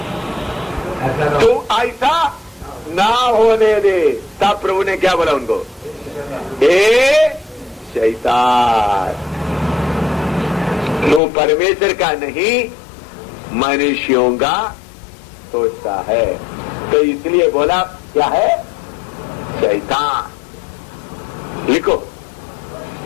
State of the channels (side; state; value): right; drops out; at 11.2 s